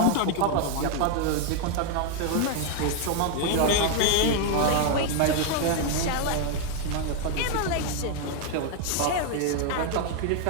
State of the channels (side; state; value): both; different; correlation 0.01